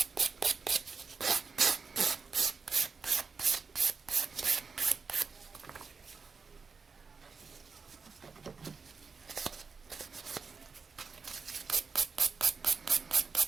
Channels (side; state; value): left; quieter; 5.1 dB